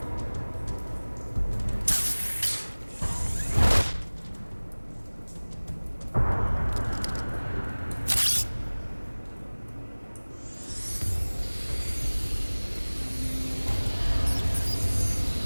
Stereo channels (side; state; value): both; inverted; correlation -1.00